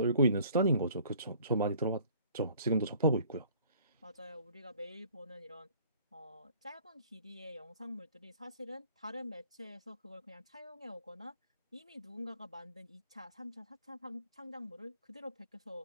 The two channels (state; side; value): inverted; both; correlation -0.54